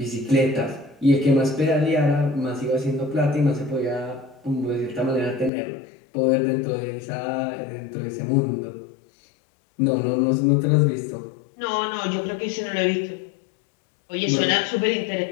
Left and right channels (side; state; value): right; drops out; at 5.5 s